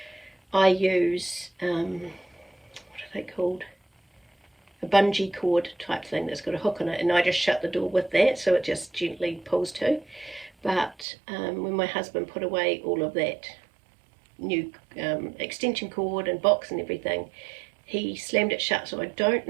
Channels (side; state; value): left; drops out; at 11.1 s